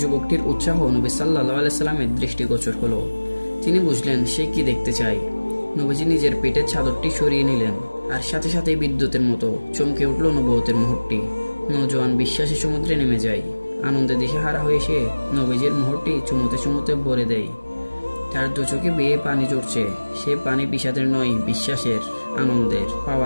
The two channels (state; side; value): inverted; both; correlation -1.00